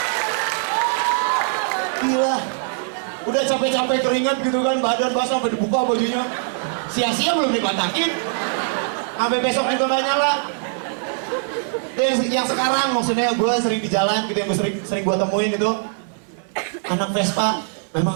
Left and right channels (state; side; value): silent; left; digital silence